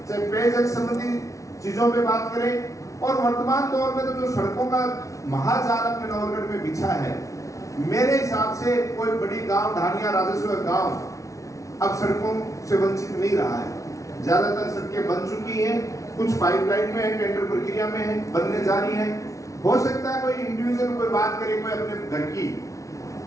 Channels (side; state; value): right; late; 0.15 ms